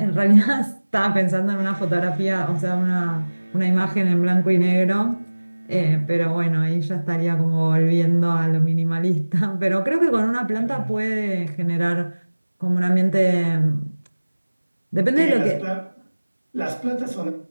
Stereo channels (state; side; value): inverted; both; correlation -1.00